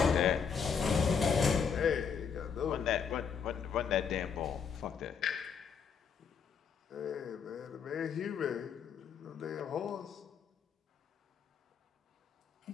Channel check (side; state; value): right; quieter; 6.5 dB